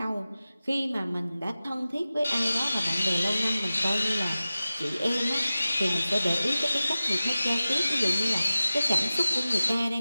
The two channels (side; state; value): both; inverted; correlation -0.96